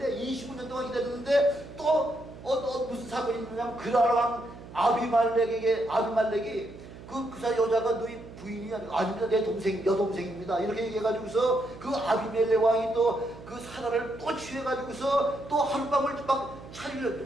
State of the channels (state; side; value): noise; right; hum, 16 dB below the sound